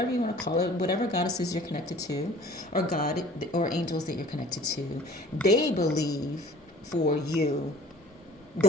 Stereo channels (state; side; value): normal; both; correlation 0.49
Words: you want to call it, whatever goddesses you're connected to, or God or angels that you're connected to, they believe for you